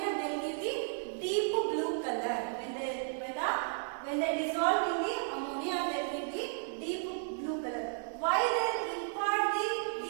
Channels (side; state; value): left; silent; digital silence